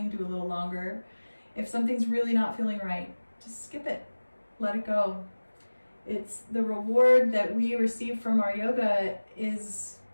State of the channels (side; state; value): both; inverted; correlation -1.00